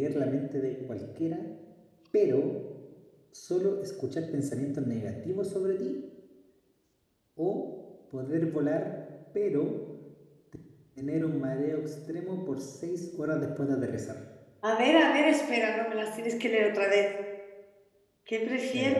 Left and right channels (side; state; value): both; identical; correlation 1.00